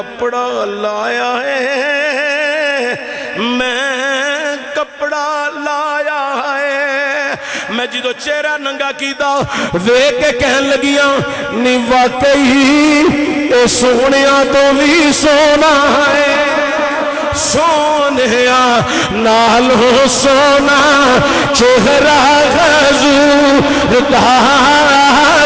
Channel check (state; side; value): identical; both; correlation 1.00